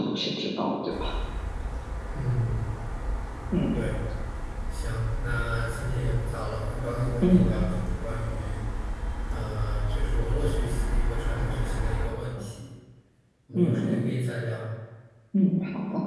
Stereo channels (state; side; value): identical; both; correlation 1.00